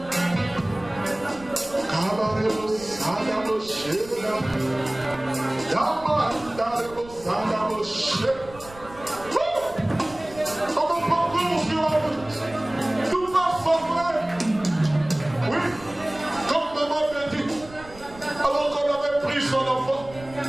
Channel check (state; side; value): noise; right; rumble, 19 dB below the sound